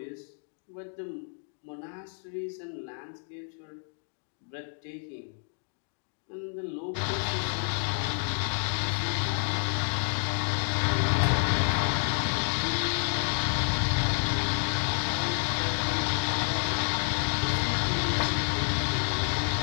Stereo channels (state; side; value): silent; right; 58 dB below the other